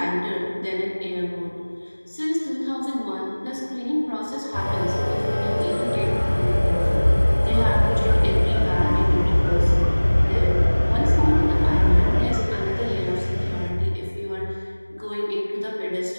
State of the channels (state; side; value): inverted; both; correlation -1.00